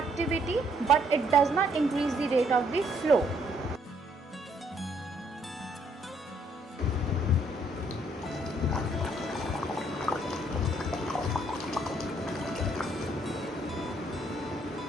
but it does not increase the rate of the flow.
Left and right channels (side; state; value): both; normal; correlation 0.68